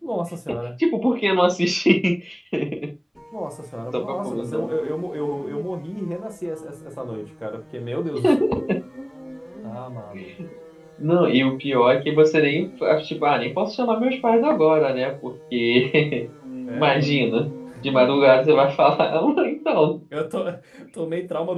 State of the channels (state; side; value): identical; both; correlation 1.00